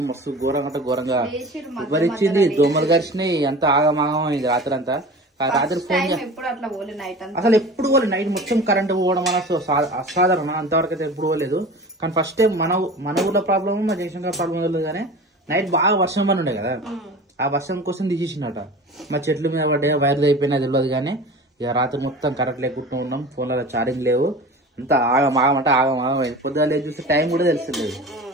మస్తు ఘోరంగా ఉబ్బరిచ్చింది, దోమలు గరిచినాయి, అంతా ఆగమాగం అయింది రాత్రి అంతా. రాత్రి ఫోన్ అసలు ఎప్పుడు పోలేదు. నైట్ మొత్తం కరెంట్ పోవడం వల్ల అసాధారణ, అంతవరకు అయితే ఎప్పుడు పోలేదు. కానీ ఫస్ట్ టైం మన ఊర్లో ప్రాబ్లమ్, మా జయశంకర్ ప్రాబ్లం లేదు. కానీ నైట్ బాగా వర్షం పని ఉండే కదా, ఆ వర్షం కోసం తీసేసిందట. మా చెట్ల మీద పడ్డా వైర్లు అయిపోయినా తెలియదు. కానీ ఇక రాత్రి మొత్తం కరెంట్ లేకుండా ఉన్నాం, ఫోన్లలో ఛార్జింగ్ లేవు, అంతా ఆగమాగమంటే ఆగమాగం అయింది. పొద్దుగా చూస్తే టైం కూడా తెలుస్తలేదు,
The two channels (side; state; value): both; normal; correlation 0.36